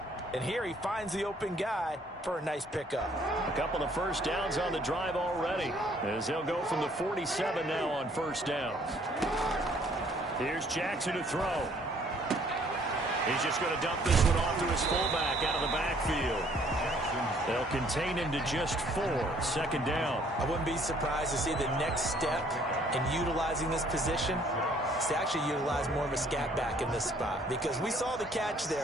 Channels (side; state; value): both; normal; correlation 0.61